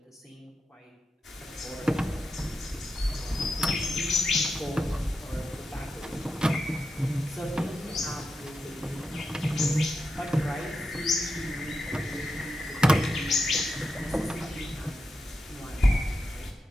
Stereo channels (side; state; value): both; normal; correlation 0.88